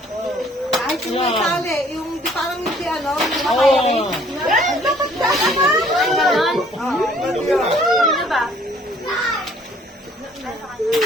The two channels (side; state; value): both; normal; correlation 0.59